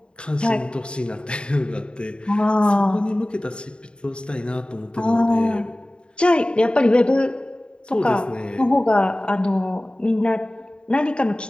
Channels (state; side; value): late; right; 0.052 ms